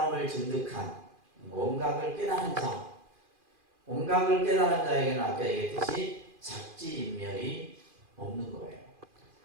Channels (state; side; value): late; left; 2.4 ms